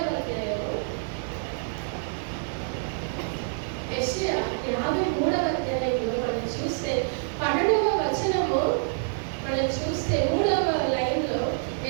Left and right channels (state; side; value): silent; left; digital silence